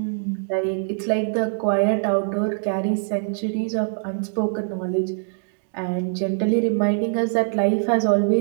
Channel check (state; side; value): silent; left; digital silence